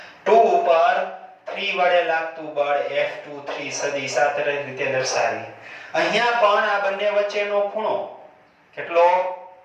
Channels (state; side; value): identical; both; correlation 1.00